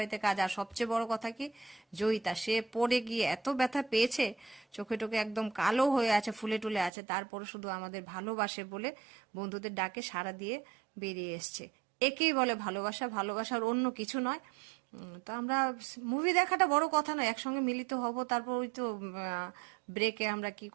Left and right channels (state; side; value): drops out; left; at 6.9 s